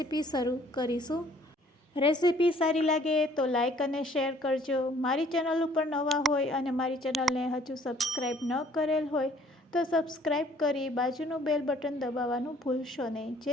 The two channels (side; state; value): both; normal; correlation 0.58